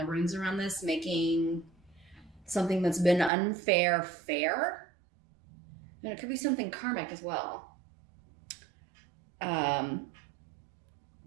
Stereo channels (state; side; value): drops out; left; at 3.3 s